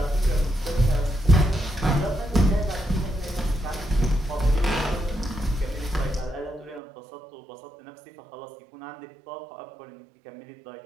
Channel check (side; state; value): left; drops out; at 6.8 s